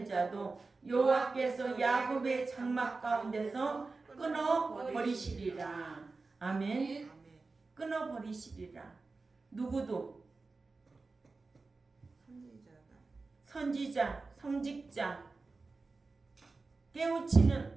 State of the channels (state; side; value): quieter; left; 3.8 dB